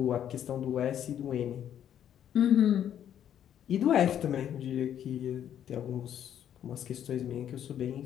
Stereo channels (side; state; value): right; quieter; 10.0 dB